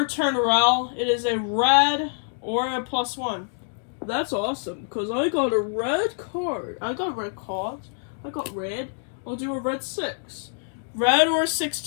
turn, Rel. It is a red or a +1. That's awesome, because I got a red card. I got red cards. I got red. I'll do a red 6. Red or 6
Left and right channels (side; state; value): right; silent; digital silence